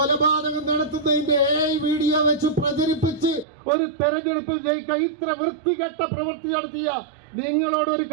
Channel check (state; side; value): drops out; left; at 3.5 s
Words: നടത്തുന്നതിന്റെ വീഡിയോ വെച്ച് പ്രചരിപ്പിച്ച് ഒരു തെരഞ്ഞെടുപ്പിൽ ജയിക്കാൻ ഇത്ര വൃത്തികെട്ട പ്രവൃത്തി നടത്തിയ നിങ്ങളോട് ഒരു